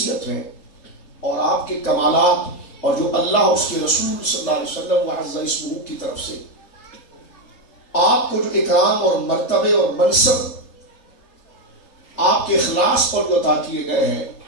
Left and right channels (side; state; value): right; late; 3.3 ms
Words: ہیں، اور آپ کے کمالات اور جو اللہ اس کے رسول صلی اللہ علیہ وسلم وعز اسمہ کی طرف سے آپ کو جو اکرام اور مرتبے اور منصب آپ کے اخلاص پر جو عطا کیے گئے ہیں،